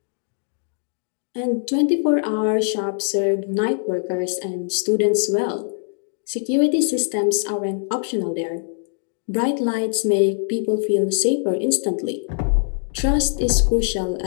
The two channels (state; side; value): silent; right; digital silence